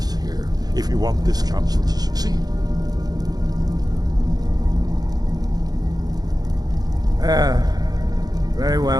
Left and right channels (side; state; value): left; late; 0.19 ms